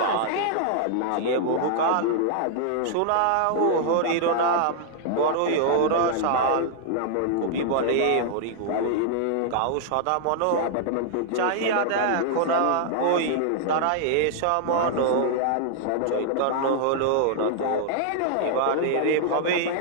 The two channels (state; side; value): different; both; correlation -0.01